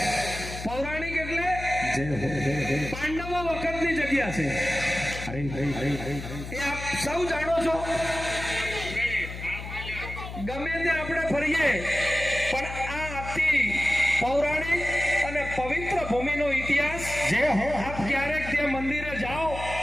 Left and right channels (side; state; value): left; noise; hum, 9 dB below the sound